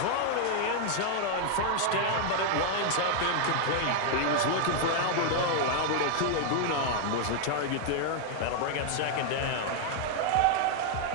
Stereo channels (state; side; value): different; both; correlation 0.00